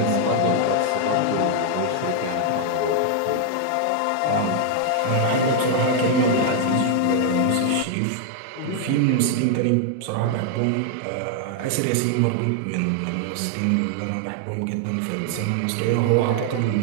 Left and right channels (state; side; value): different; both; correlation 0.00